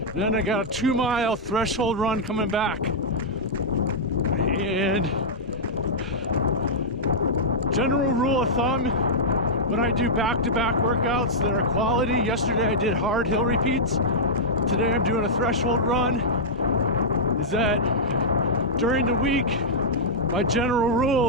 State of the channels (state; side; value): normal; both; correlation -0.10